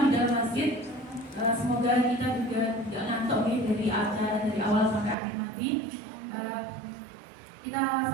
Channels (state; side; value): drops out; left; at 5.2 s